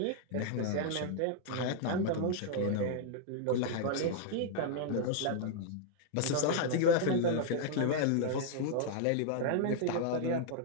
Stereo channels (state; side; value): different; both; correlation -0.01